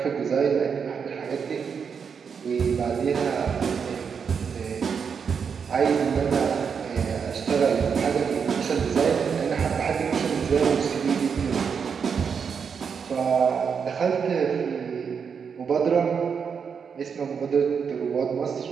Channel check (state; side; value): quieter; left; 6.4 dB